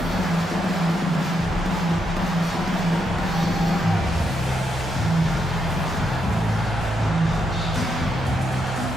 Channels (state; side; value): normal; both; correlation 0.80